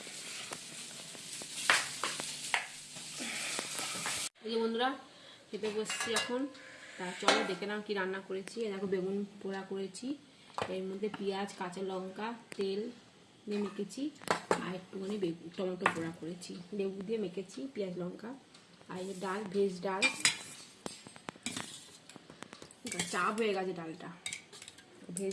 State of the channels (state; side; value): identical; both; correlation 1.00